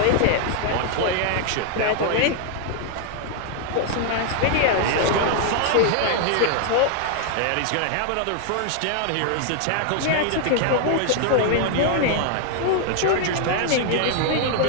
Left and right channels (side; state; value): both; different; correlation 0.00